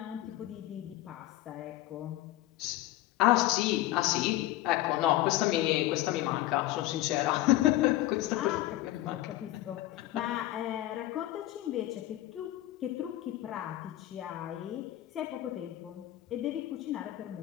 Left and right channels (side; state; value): right; quieter; 15.6 dB